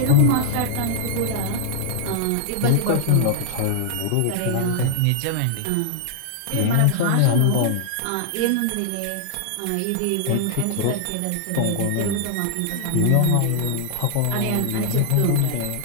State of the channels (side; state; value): both; different; correlation -0.01